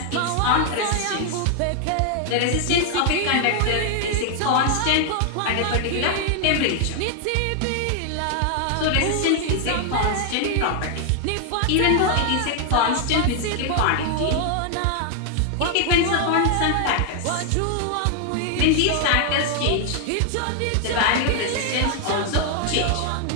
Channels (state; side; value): different; both; correlation 0.00